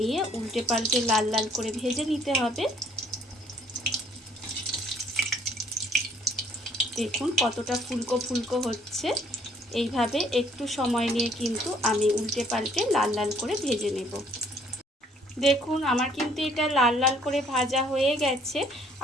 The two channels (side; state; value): both; normal; correlation 0.62